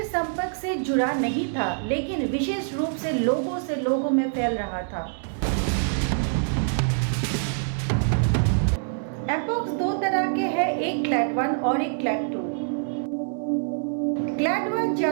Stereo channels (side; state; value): left; silent; digital silence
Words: संपर्क से जुड़ा नहीं था, लेकिन विशेष रूप से लोगों में फैल रहा था। एमपॉक्स दो तरह के हैं, एक क्लैड 1 और एक क्लैड 2। क्लैड 1